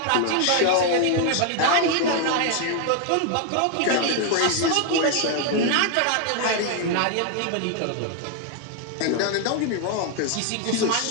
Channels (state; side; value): different; both; correlation 0.00